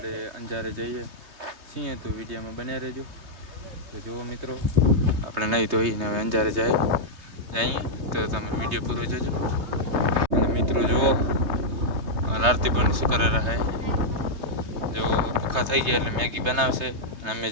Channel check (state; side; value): late; left; 3.2 ms